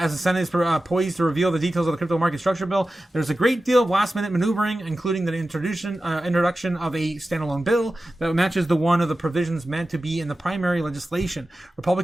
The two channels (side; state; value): both; normal; correlation 0.94